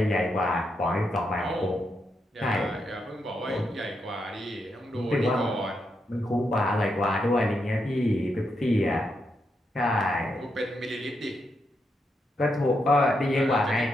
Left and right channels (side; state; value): both; normal; correlation 0.82